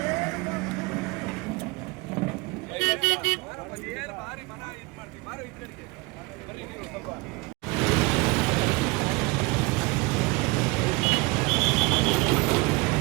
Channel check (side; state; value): left; quieter; 25.8 dB